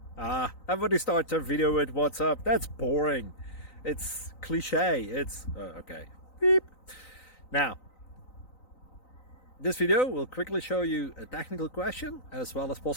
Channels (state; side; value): late; right; 3.9 ms